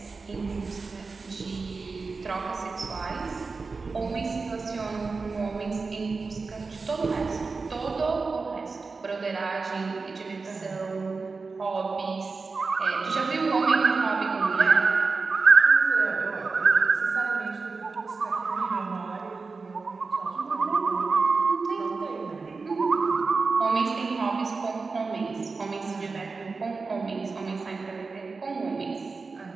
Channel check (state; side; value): quieter; left; 4.3 dB